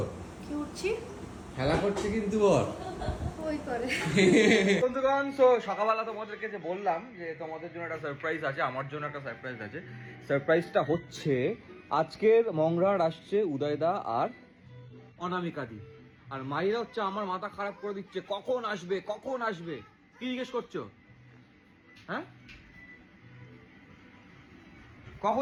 কি উঠছি? খেলা করছে কিন্তু বল ওই করে। বন্ধুগণ, তো সকালবেলা তোমাদেরকে যে বললাম যে তোমাদের জন্য একটা সারপ্রাইজ আছে, আমার জন্য একটা সারপ্রাইজ আছে। সারপ্রাইজটা হচ্ছে আজকের মংরার আসছে উদয়দা আর অনামিকাদি, আর মাইরা হচ্ছে আমার মাথা খারাপ করে দিচ্ছে, কখন আসবে কখন আসবে। কি জিজ্ঞেস করছো? হ্যাঁ,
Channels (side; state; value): both; identical; correlation 1.00